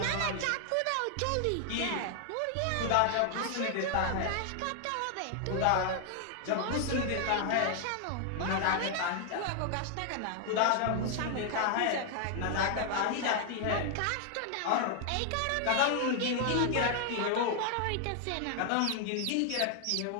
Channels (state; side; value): different; both; correlation 0.00